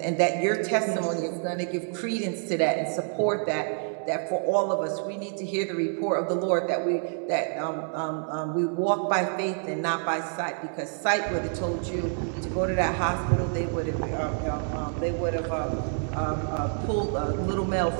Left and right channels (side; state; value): left; silent; 58 dB below the other